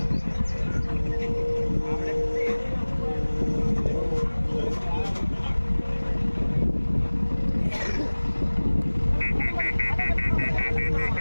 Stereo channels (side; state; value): both; inverted; correlation -1.00